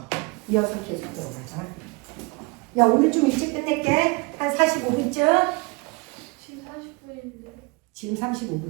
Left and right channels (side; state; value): left; quieter; 27.9 dB